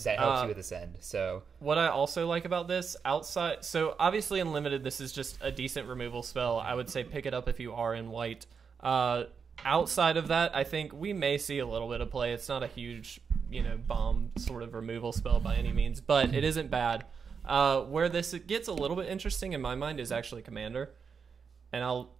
That helps you with this end. So what I also like about this, outside... So, obviously, in Limited, this is just a decent removal spell. I would say pick it up if you are in white. Outside of that, I think we may see a little bit of play. It's not a huge, bomb sort of removal spell by any means, but it isn't bad. Where this gets a little bit interesting in my mind is actually Commander, and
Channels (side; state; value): left; quieter; 6.0 dB